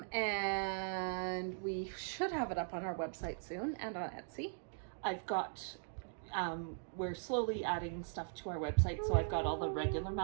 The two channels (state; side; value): silent; left; digital silence